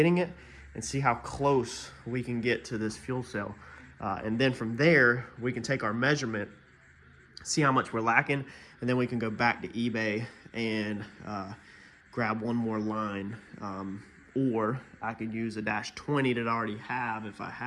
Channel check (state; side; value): identical; both; correlation 1.00